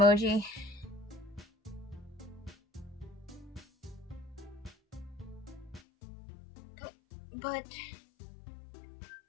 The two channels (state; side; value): drops out; right; at 5.8 s